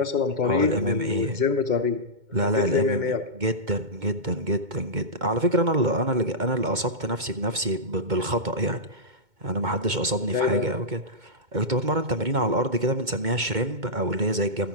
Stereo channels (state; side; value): late; left; 2.2 ms